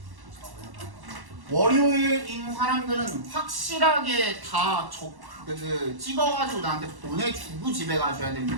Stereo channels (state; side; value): late; left; 1.1 ms